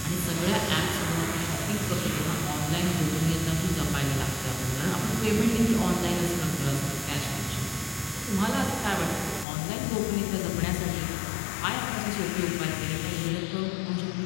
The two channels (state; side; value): drops out; right; at 9.5 s